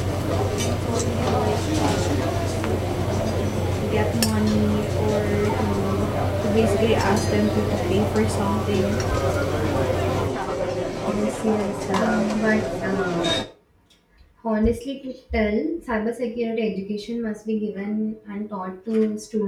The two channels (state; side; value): identical; both; correlation 1.00